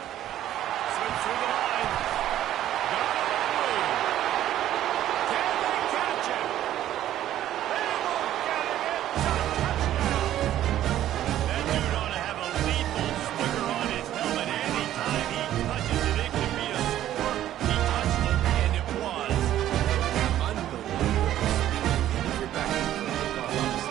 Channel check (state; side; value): quieter; left; 12.4 dB